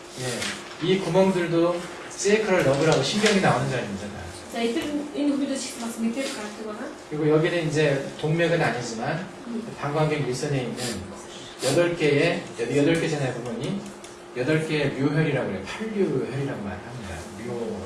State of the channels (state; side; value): identical; both; correlation 1.00